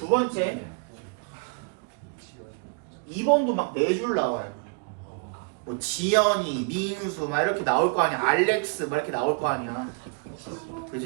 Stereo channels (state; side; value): quieter; left; 36.9 dB